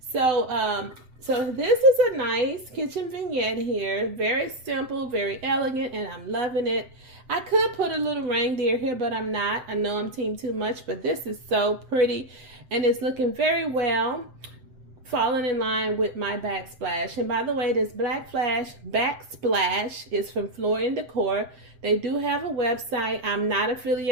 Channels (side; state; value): left; late; 7.8 ms